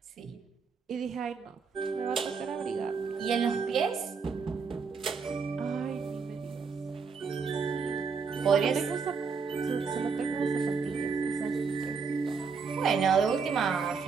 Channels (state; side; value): quieter; left; 5.4 dB